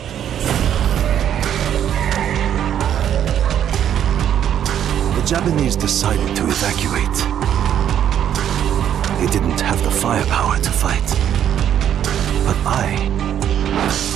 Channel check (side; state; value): left; quieter; 9.9 dB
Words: The Japanese decided to evacuate. They didn't have the firepower to fight. But I